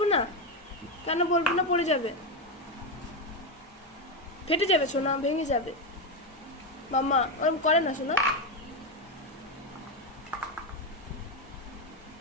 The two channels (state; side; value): normal; both; correlation 0.09